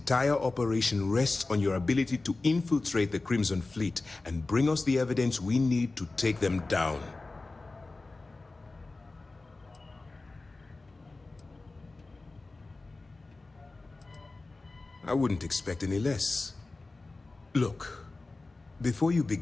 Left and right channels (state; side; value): quieter; right; 3.4 dB